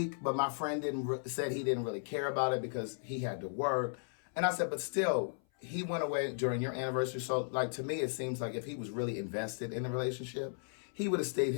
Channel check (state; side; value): silent; right; 54 dB below the other